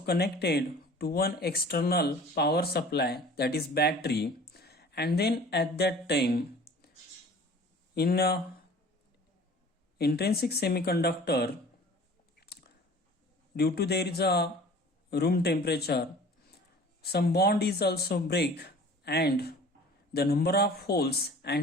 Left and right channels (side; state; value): both; normal; correlation 0.46